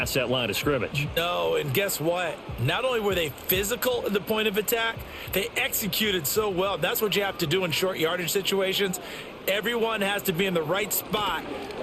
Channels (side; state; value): both; identical; correlation 1.00